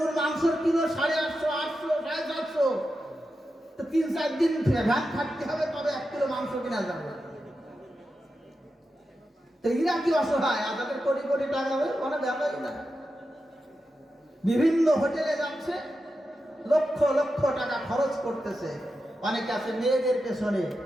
মাংসের কিলো 850, 800, 750, তো 3-4 দিন ভ্যান খাটতে হবে তবে 1 কিলো মাংস কিনা যাবে। তো এরা কি অসহায়? আর তাদের কোটি কোটি টাকা হবে, কোনো ব্যাপারই না। বিভিন্ন হোটেলে যাচ্ছে, লক্ষ লক্ষ টাকা খরচ করতেছে। অনেকে আছে মেয়েদের পেছনে,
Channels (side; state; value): both; normal; correlation 0.89